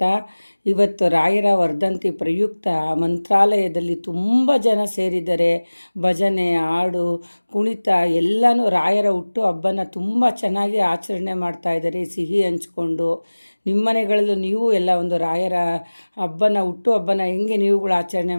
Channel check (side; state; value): both; inverted; correlation -1.00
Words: ಇವತ್ತು ರಾಯರ ವರ್ಧಂತಿ ಪ್ರಯುಕ್ತ ಮಂತ್ರಾಲಯದಲ್ಲಿ ತುಂಬ ಜನ ಸೇರಿದ್ದಾರೆ. ಭಜನೆ, ಹಾಡು, ಕುಣಿತ ಎಲ್ಲನೂ ರಾಯರ ಹುಟ್ಟು ಹಬ್ಬನ ತುಂಬ ಚೆನ್ನಾಗಿ ಆಚರಣೆ ಮಾಡ್ತಾಯಿದ್ದಾರೆ, ಸಿಹಿ ಹಂಚ್ಕೊಂಡು. ನಿಮ್ಮ ಮನೆಗಳಲ್ಲೂ ನೀವು ಎಲ್ಲ ಒಂದು ರಾಯರ ಹುಟ್ಟು ಹಬ್ಬನ ಹೆಂಗೆ ನೀವುಗಳು